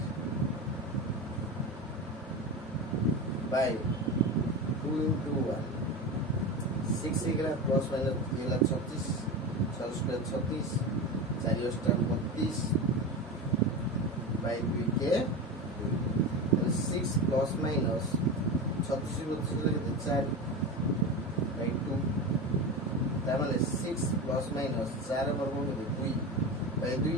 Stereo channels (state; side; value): normal; both; correlation 0.24